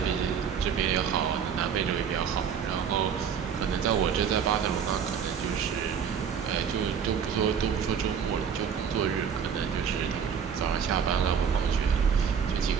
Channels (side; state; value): left; quieter; 7.3 dB